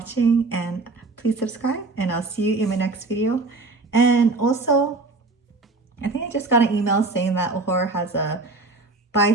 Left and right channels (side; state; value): left; quieter; 3.4 dB